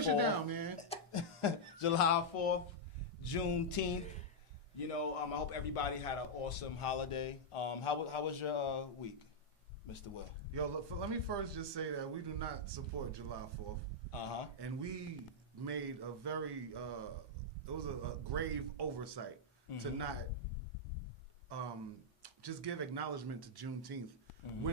shit down, man. July 4th, Juneteenth. You know, I hope everybody had an awesome holiday. How was your week, Mr. Will? Yo, look, let me first just say that we do not support July 4th. And we made a very, it was a grave oversight to not just give acknowledgement to Juneteenth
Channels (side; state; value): both; normal; correlation -0.05